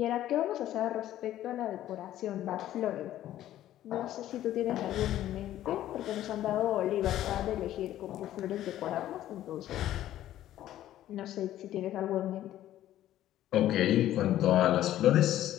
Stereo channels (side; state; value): right; quieter; 13.0 dB